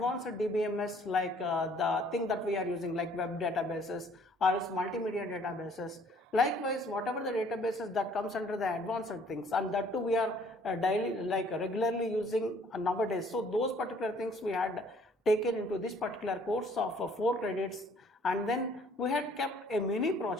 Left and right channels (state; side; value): normal; both; correlation 0.59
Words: DBMS, like the thing that we are using like web databases or else multimedia databases. Likewise, whatever the databases that comes under the advanced things, and that too we are regularly using nowadays. So those particular things we had taken into this particular course of 4 credits, and then we had kept a mini